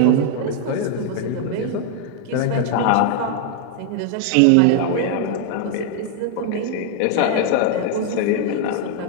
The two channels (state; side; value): different; both; correlation 0.00